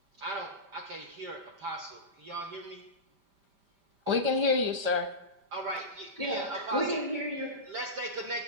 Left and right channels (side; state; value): left; late; 5.1 ms